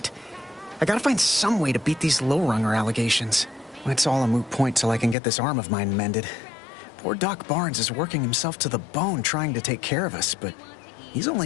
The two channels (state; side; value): drops out; right; at 5.2 s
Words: I gotta find some way to beat these low-runger allegations. It's all a moot point till I can get this arm of mine mended. Poor Doc Barnes is working himself to the bone trying to take care of us, but he's